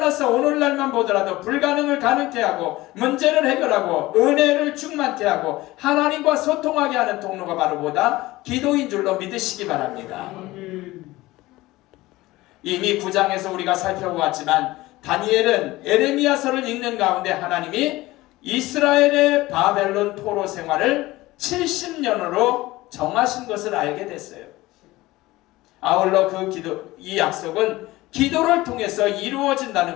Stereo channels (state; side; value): quieter; right; 18.7 dB